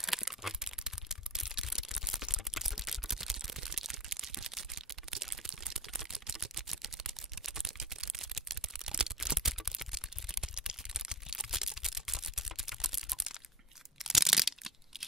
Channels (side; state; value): both; normal; correlation 0.33